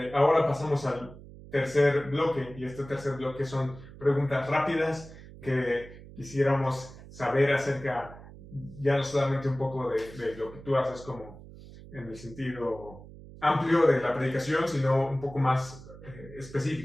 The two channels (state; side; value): noise; right; hum, 17 dB below the sound